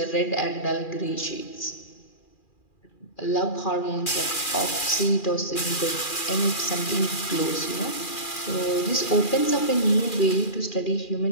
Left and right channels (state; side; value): late; right; 2.4 ms